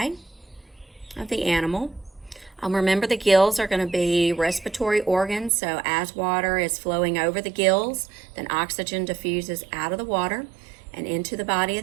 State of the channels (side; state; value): left; drops out; at 5.5 s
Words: of the animal. Remember, the gills are going to be respiratory organs. So as water is flowing over the gills, then oxygen diffuses out of the water and into the body of